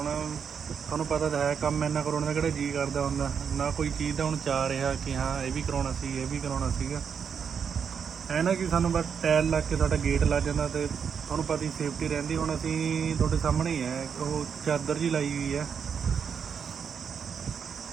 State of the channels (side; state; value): left; quieter; 6.9 dB